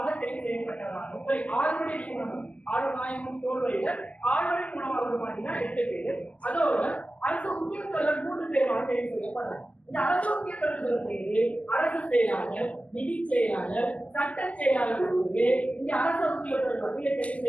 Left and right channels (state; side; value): late; right; 0.065 ms